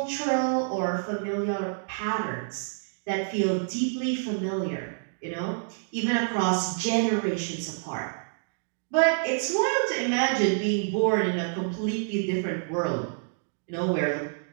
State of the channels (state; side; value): silent; left; digital silence